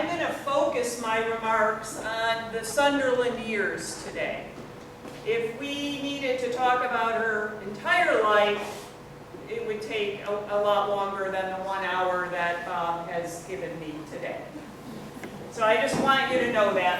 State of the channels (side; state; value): both; identical; correlation 1.00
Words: going to focus my remarks on the Sunderland years today. If we needed to talk about her entire life, it would take a lot longer than the 1 hour that Bob has given me today. So I just want you to know